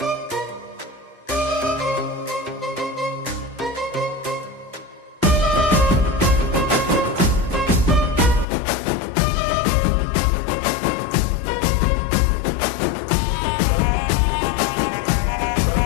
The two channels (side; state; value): right; drops out; at 8.5 s